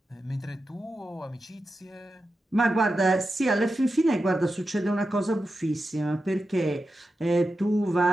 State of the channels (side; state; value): both; normal; correlation 0.90